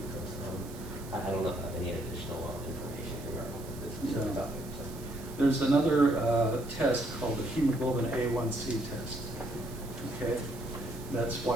I don't know if I have any additional information regarding this specific topic. So. There's another test called the hemoglobin A1C test. Okay, that's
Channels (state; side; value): noise; right; hiss, 18 dB below the sound